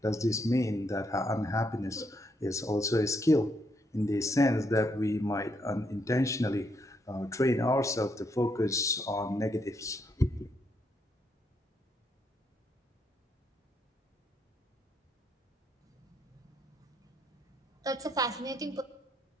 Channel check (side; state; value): both; normal; correlation 0.76